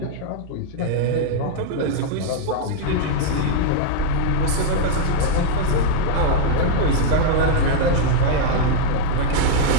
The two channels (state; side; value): different; both; correlation -0.01